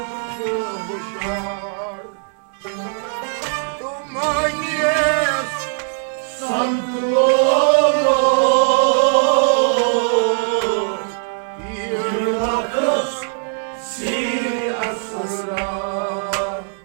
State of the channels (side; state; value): left; silent; digital silence